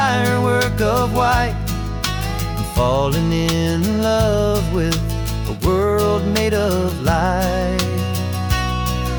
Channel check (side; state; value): both; identical; correlation 1.00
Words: of white. I'm falling in love with a world made of light.